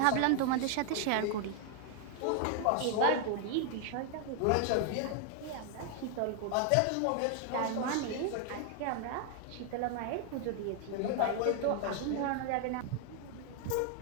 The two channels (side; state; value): both; different; correlation 0.00